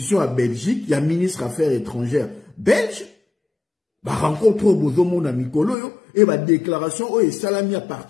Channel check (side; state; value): right; drops out; at 5.8 s